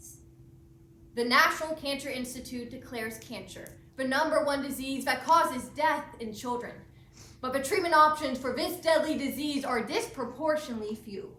The National Cancer Institute declares cancer the #1 disease that causes death in children. But the treatment options for this deadly disease are disproportionately few.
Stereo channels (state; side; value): identical; both; correlation 1.00